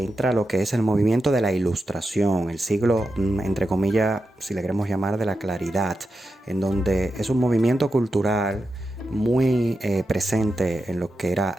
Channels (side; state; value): both; normal; correlation 0.89